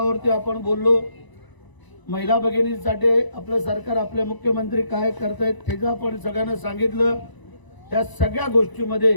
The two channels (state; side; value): late; right; 1.0 ms